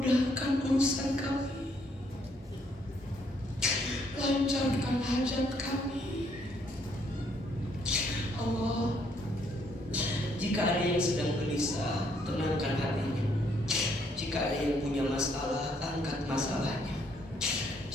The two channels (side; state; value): both; normal; correlation 0.69